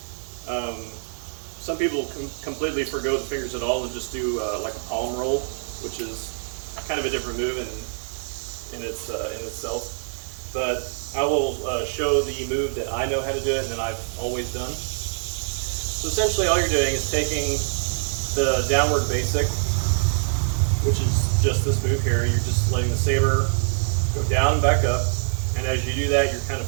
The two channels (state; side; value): silent; left; 62 dB below the other